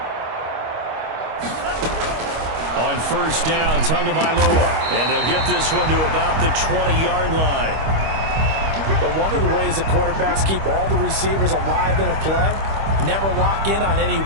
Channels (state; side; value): late; left; 25 ms